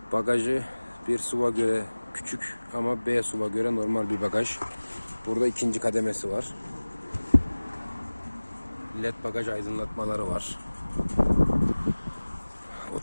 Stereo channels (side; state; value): both; inverted; correlation -1.00